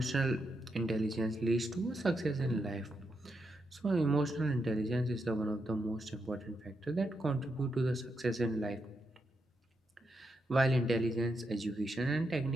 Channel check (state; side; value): normal; both; correlation 0.83